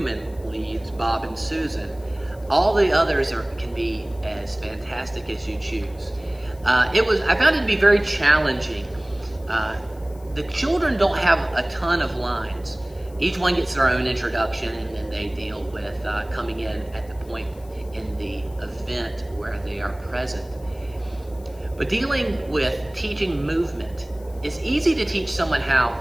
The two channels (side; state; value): left; noise; hiss, 26 dB below the sound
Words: leads, Bob and Susan, all the others can be as fantastic as you choose. I found it to be very challenging. The children don't have a ton of lines. Each one gets their own introduction, and then they deal with coming in at the point in the event where they are present. But dealing with teaching movement, it's easy to teach someone how,